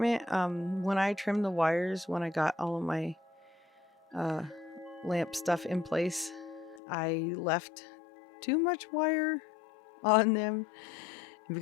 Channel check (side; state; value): right; drops out; at 6.8 s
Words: When I trimmed the wires, when I got all of my lamp stuff in place, I left too much wire on them. And